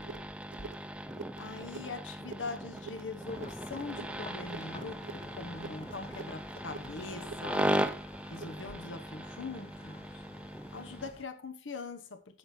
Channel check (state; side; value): normal; both; correlation 0.59